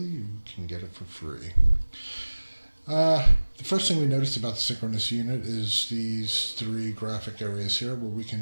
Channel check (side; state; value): both; inverted; correlation -1.00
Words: you can get it for free. The first thing we noticed about the Synchronous unit is these three graphic areas here where we